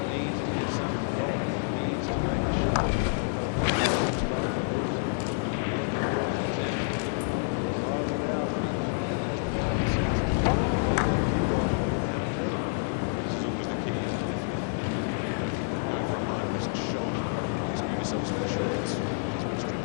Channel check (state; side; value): silent; right; digital silence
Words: needs to get something going. He needs to make a shot, but I don't know if this is the one you start with. Here's a look at Earl's attempt. He jaws it out, but he has the common sense to play that cue ball way down table. Well, this is always the key, isn't it? If you know, if you're going for a high risk shot, at least leave yourself some insurance, which is what